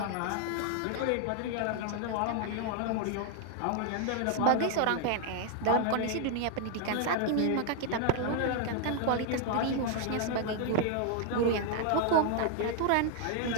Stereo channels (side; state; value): both; different; correlation 0.00